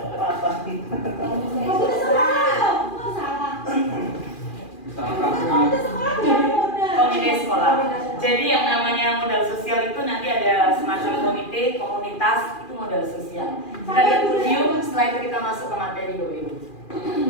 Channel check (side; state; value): right; late; 2.4 ms